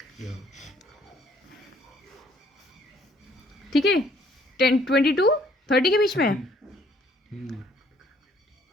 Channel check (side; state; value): both; normal; correlation 0.63